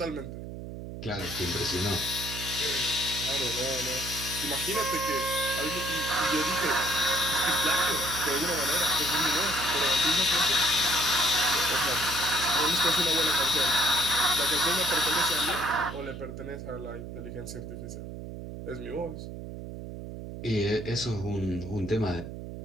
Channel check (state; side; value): noise; right; hum, 9 dB below the sound